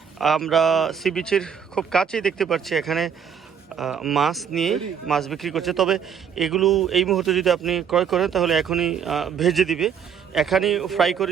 আমরা সি বিচের খুব কাছেই দেখতে পাচ্ছি এখানে মাছ নিয়ে মাছ বিক্রি করছে। তবে এগুলো এই মুহূর্তে যদি আপনি ক্রয় করেন তাহলে এখনই ভেজে দিবে, এখানেই ফ্রাই করে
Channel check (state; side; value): quieter; left; 7.5 dB